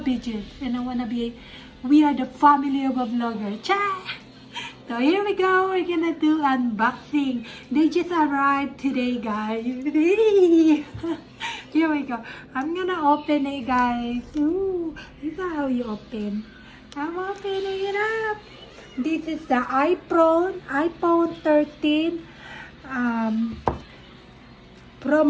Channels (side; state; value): both; identical; correlation 1.00